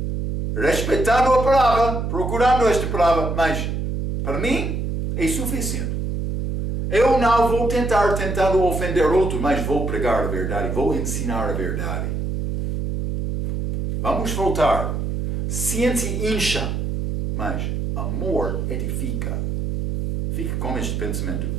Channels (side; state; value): right; noise; hum, 2 dB below the sound